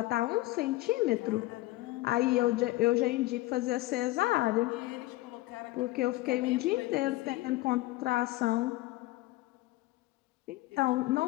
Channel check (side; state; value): right; quieter; 18.9 dB